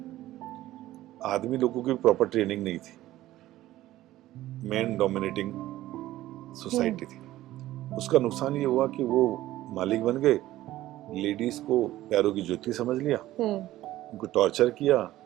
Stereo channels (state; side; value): quieter; left; 15.2 dB